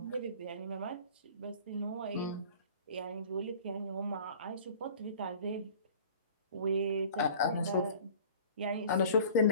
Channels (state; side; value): inverted; both; correlation -0.45